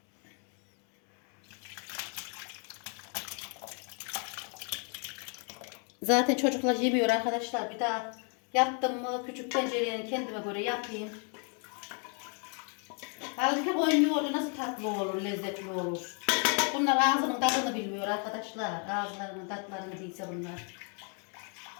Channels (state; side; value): quieter; right; 39.3 dB